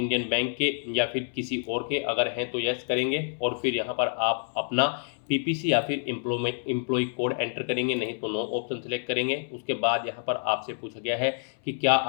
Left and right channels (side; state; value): right; silent; 60 dB below the other